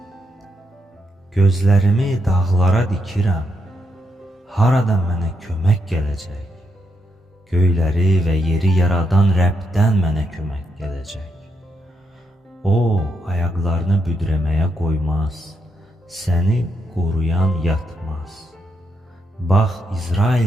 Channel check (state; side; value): normal; both; correlation 0.81